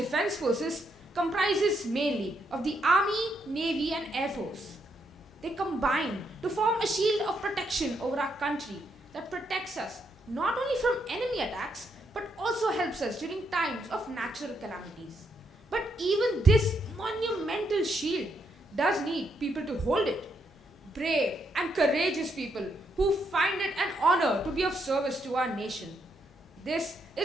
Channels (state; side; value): normal; both; correlation 0.77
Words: Forces comprises mainly of the Army, Navy and Air Force. They combine to form a shield of protection over our country that protects us not only from enemy attacks but also helps us during times of natural calamities. But even this monumental shield does need people to hold it. Brave and courageous people who find it an honor to be of service to our nation. This